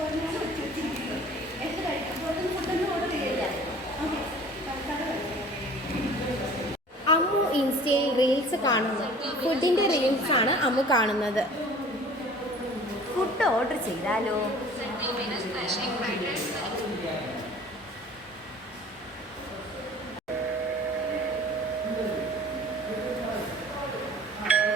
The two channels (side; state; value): both; normal; correlation 0.47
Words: അമ്മു ഇൻസ്റ്റയിൽ റീൽസ് കാണുന്നു. ഫുഡിൻ്റെ റീൽസാണ് അമ്മു കാണുന്നത്. ഫുഡ് ഓർഡർ ചെയ്താലോ?